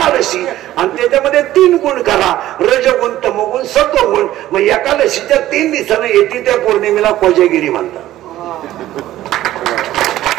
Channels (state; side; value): quieter; left; 14.2 dB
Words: आणि त्याच्यामध्ये 3 गुण करा, रजगुण, तमगुण, सत्वगुण. मग एकादशीच्या 3 दिवसानं येते त्या पौर्णिमेला कोजागिरी म्हणतात.